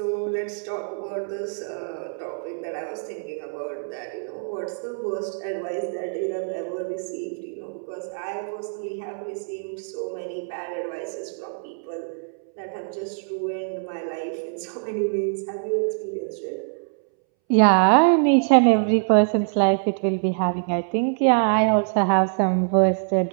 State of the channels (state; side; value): silent; left; 62 dB below the other